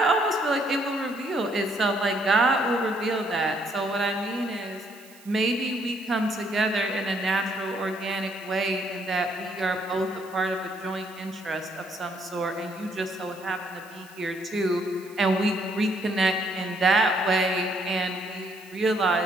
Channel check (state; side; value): noise; right; hiss, 24 dB below the sound